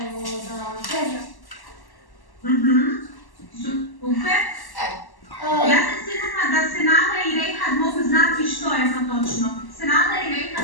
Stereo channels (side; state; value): right; late; 1.1 ms